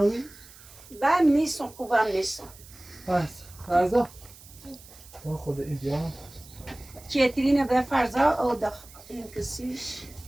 بم نیستم خوبم نیستم. بس فرزاد ما خود این بیا کیترینه به فرزاد او داخل این کسیش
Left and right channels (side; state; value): right; noise; hiss, 21 dB below the sound